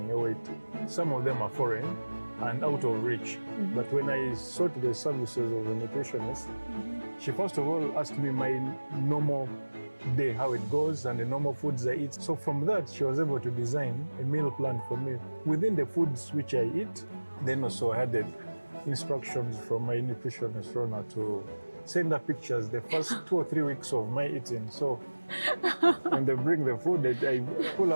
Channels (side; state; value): both; inverted; correlation -1.00